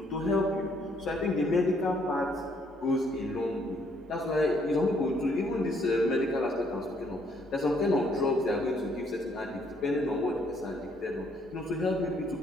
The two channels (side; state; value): both; normal; correlation 0.68